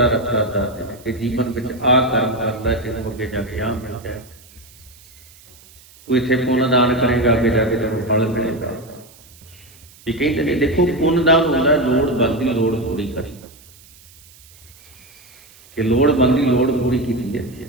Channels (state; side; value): noise; right; hiss, 25 dB below the sound